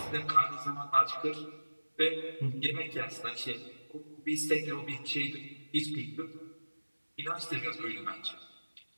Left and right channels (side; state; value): both; inverted; correlation -1.00